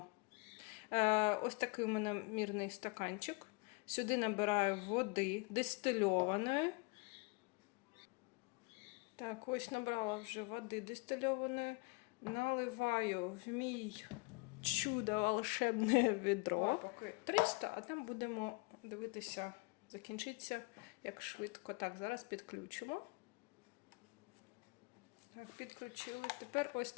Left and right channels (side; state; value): right; quieter; 28.2 dB